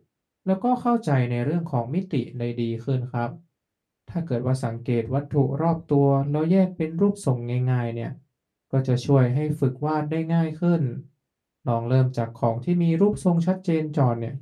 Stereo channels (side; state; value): both; identical; correlation 1.00